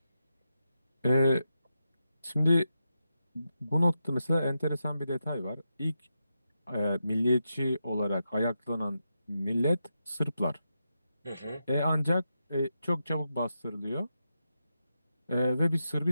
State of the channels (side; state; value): both; inverted; correlation -0.87